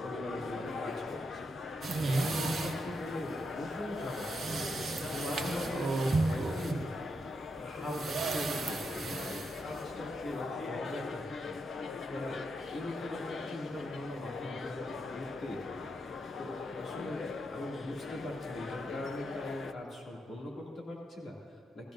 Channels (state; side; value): normal; both; correlation 0.82